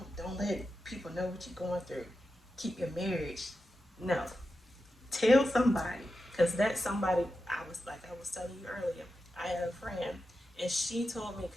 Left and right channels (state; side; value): normal; both; correlation 0.90